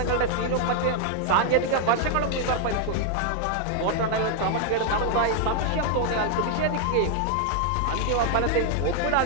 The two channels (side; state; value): both; different; correlation 0.00